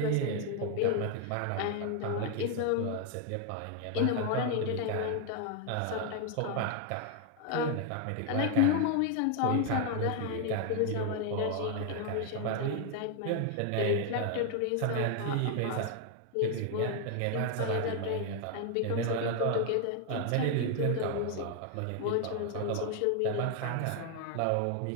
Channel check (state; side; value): different; both; correlation 0.00